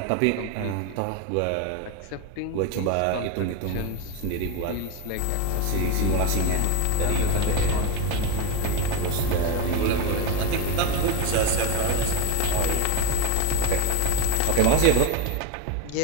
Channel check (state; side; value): different; both; correlation 0.03